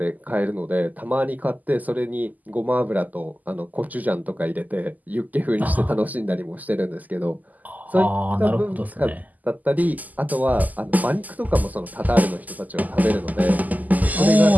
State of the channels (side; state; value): left; late; 0.081 ms